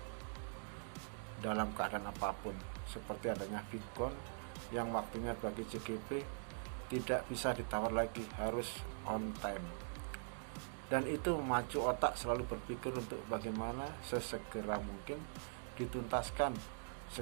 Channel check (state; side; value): silent; left; digital silence